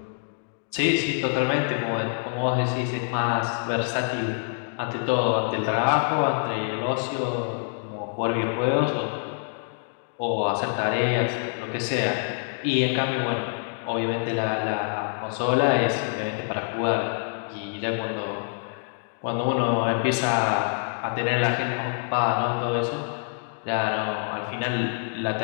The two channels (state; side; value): silent; right; digital silence